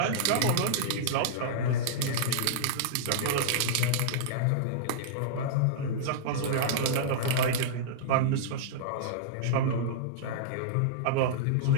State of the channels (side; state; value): both; different; correlation -0.02